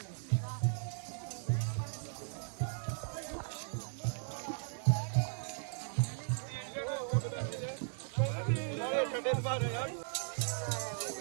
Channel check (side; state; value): left; silent; digital silence